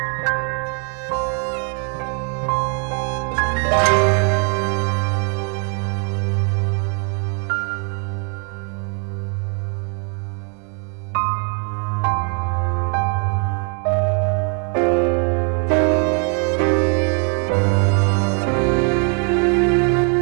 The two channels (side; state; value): left; quieter; 39.8 dB